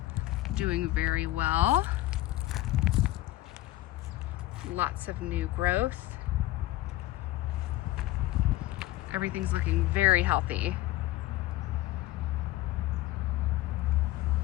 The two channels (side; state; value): right; quieter; 16.4 dB